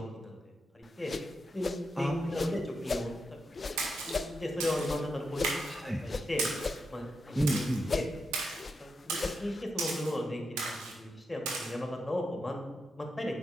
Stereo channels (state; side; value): normal; both; correlation 0.85